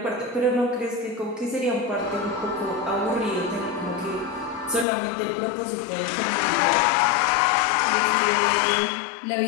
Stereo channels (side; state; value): right; drops out; at 4.9 s